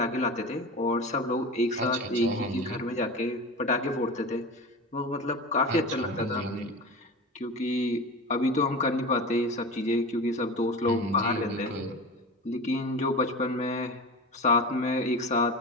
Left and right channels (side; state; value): both; normal; correlation 0.29